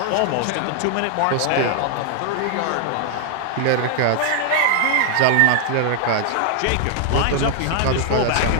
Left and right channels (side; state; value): both; different; correlation 0.00